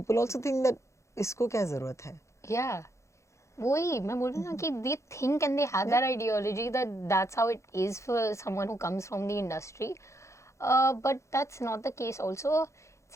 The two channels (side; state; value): right; late; 0.14 ms